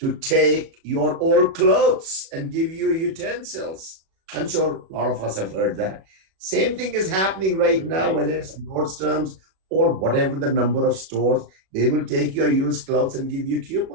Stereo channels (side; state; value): left; late; 37 ms